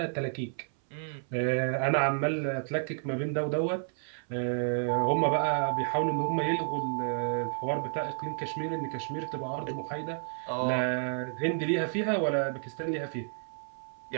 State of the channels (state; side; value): silent; left; 57 dB below the other